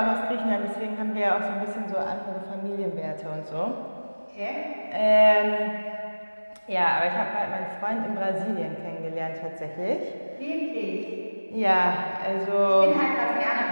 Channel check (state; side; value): inverted; both; correlation -1.00